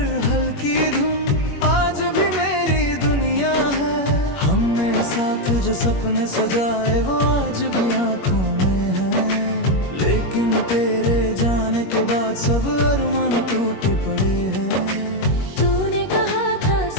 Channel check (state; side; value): late; right; 21 ms